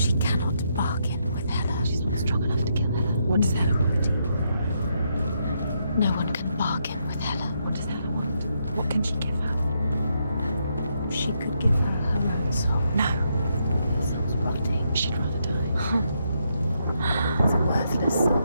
cannot bargain with Hella. She's not strong enough to kill Hella. What does Hella want? No one can bargain with Hella. What does Hella want? What can she give her? She could give her her own soul. No. Soul's rotting. She'd rather die. It's a worthless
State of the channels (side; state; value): both; inverted; correlation -0.78